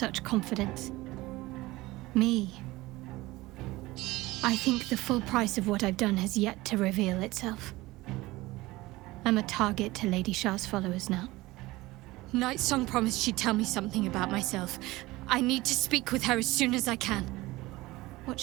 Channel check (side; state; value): left; quieter; 19.6 dB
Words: confidence. Me. I think the full price of what I've done has yet to reveal itself. I'm a target to Lady Shah's followers now. Night Song promised she'd tell me something about myself. I need to speak with her as soon as I can. What